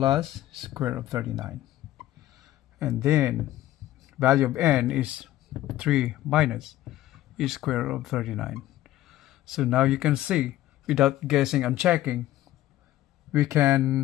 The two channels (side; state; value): right; quieter; 14.6 dB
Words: square root of 39. And then value of n is 3 minus is square root of 39. So now you can see, without guessing and checking, we